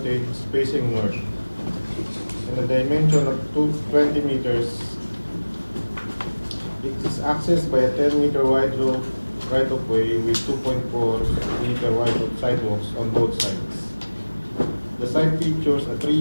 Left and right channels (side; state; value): both; inverted; correlation -1.00